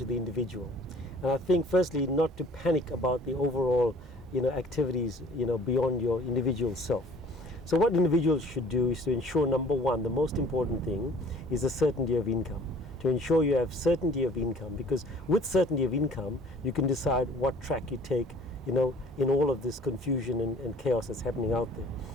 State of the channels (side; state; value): both; normal; correlation 0.52